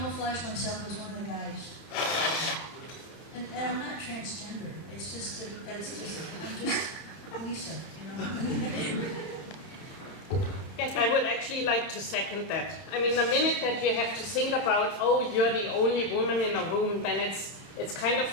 myself as one of the guys. And I'm not transgender. It's just I'm just Lisa, you know. Yes, I would actually like to second that. I mean, the minute that you have to think about, oh, you're the only woman in a room, then it's kind of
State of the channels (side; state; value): right; late; 31 ms